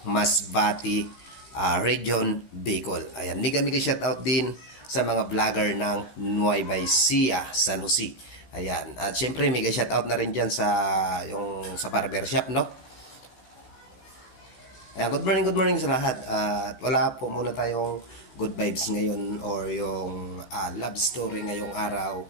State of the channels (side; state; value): right; late; 15 ms